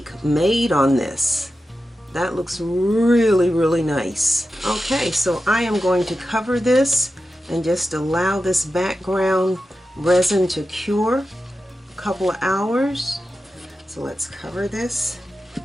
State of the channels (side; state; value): both; normal; correlation 0.92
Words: made on this. That looks really, really nice. Okay, so I am going to cover this and just allow this background resin to cure a couple of hours. So let's cover this,